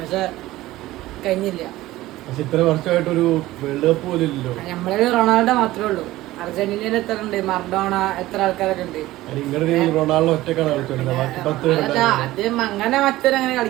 പക്ഷെ കഴിഞ്ഞില്ല. പക്ഷെ ഇത്ര വർഷമായിട്ടൊരു വേൾഡ് കപ്പ് പോലും ഇല്ലല്ലോ. നമ്മളെ റൊണാൾഡോ മാത്രമേ ഉള്ളൂ. അർജന്റീനയിൽ എത്ര ഉണ്ട്? മർഡോണ, എത്ര ആൾക്കാരൊക്കെ ഉണ്ട്. റൊണാൾഡോ ഒറ്റക്കാണ് കളിച്ചോണ്ടിരുന്നത്. ആദ്യം അങ്ങനെ മറ്റൊരങ്ങനെ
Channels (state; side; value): quieter; left; 16.8 dB